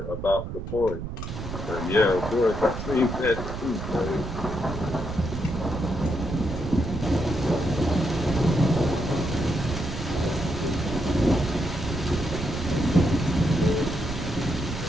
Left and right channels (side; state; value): right; noise; rumble, 7 dB below the sound